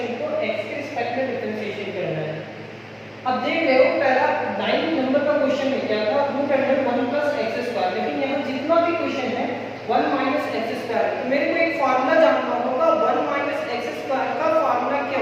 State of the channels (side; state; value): both; identical; correlation 1.00